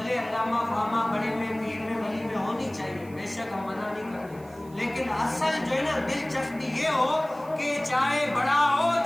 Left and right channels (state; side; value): noise; right; hiss, 26 dB below the sound